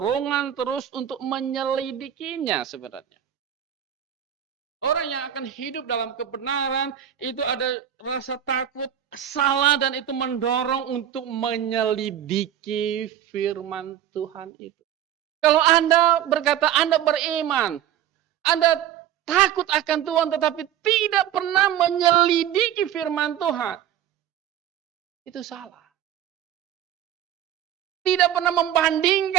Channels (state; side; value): quieter; left; 10.8 dB